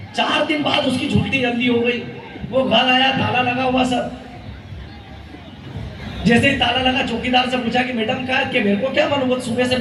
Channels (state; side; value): identical; both; correlation 1.00